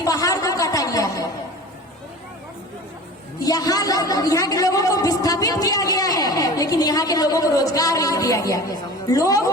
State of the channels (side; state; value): both; normal; correlation 0.38